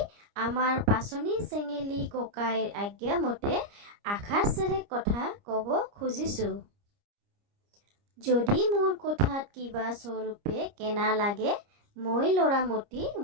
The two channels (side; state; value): left; late; 30 ms